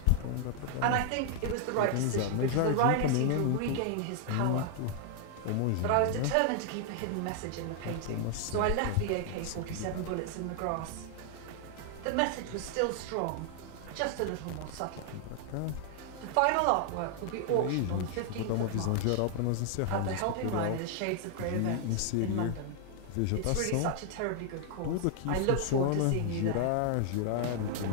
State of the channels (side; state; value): both; different; correlation 0.00